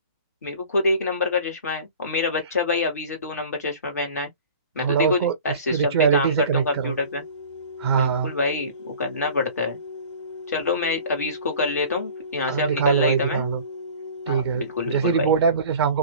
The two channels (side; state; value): both; inverted; correlation -0.43